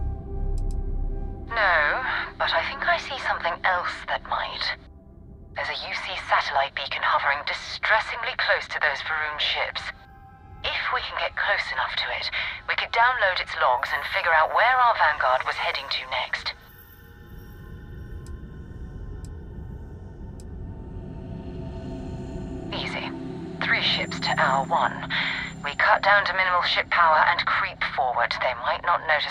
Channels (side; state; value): both; identical; correlation 1.00